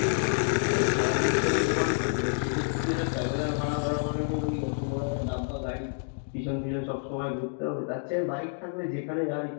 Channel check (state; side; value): silent; right; digital silence